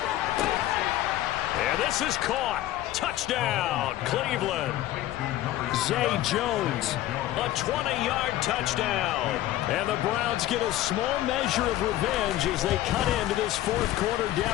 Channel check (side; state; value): right; quieter; 14.4 dB